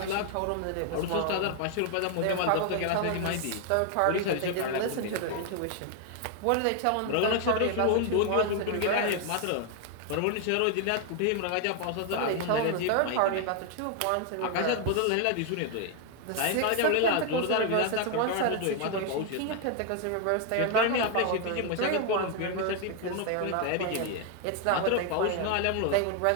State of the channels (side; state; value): both; different; correlation 0.00